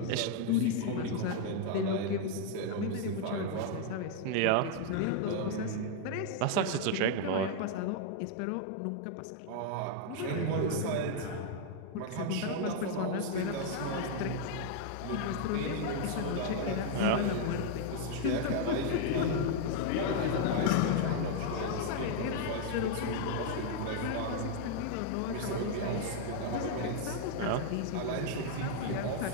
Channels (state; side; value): different; both; correlation 0.00